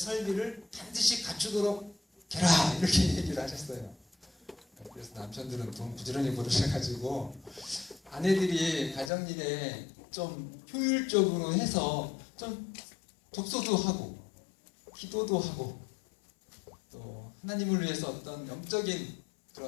반드시 갖추도록 해라. 이렇게 얘기를 하셨어요. 그래서 남편들은 돈 부지런히 벌으셔가지고 아내들이 가정일에 좀 효율적으로 해서 좀 독서도 하고 기도도 하고 또 하나님을 위해서 어떤 영적인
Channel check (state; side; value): drops out; right; at 9.1 s